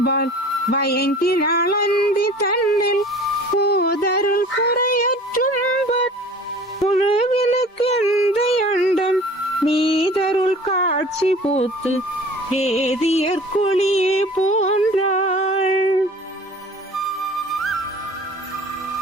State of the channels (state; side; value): normal; both; correlation 0.45